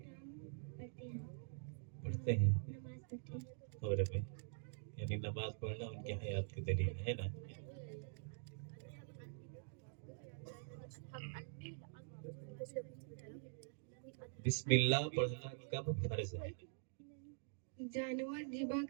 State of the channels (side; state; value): left; silent; digital silence